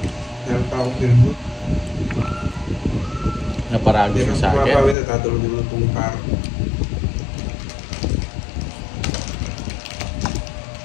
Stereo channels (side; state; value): right; drops out; at 5.0 s